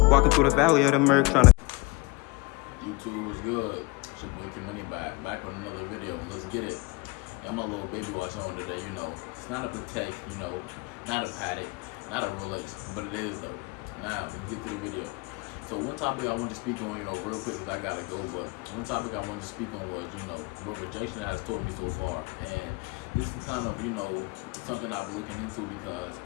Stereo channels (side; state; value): right; quieter; 26.0 dB